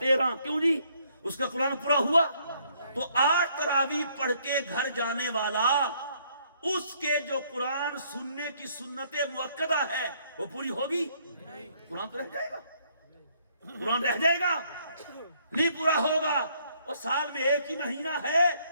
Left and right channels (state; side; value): inverted; both; correlation -0.67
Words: کیوں جی؟ اس کا قرآن پورا ہوا. تو 8 تراویح پڑھ کے گھر جانے والا اس کے جو قرآن سننے کی سنت مؤکدہ ہے وہ پوری ہوگی؟ قرآن تو رہ جائے گا, قرآن رہ جائے گا, نہیں پورا ہوگا. اور سال میں ایک ہی مہینہ ہے